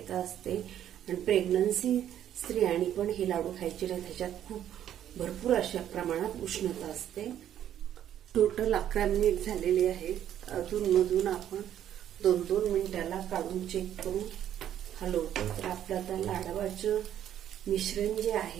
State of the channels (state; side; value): quieter; left; 10.8 dB